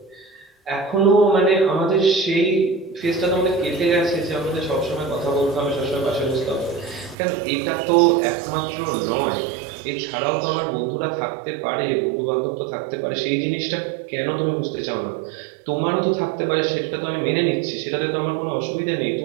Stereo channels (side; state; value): left; drops out; at 7.2 s